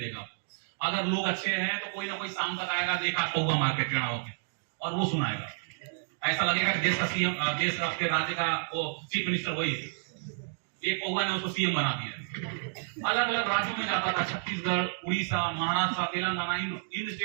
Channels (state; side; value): silent; left; digital silence